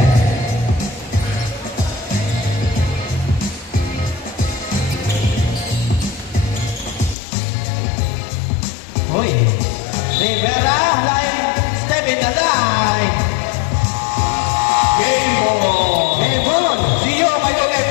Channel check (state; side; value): drops out; right; at 7.2 s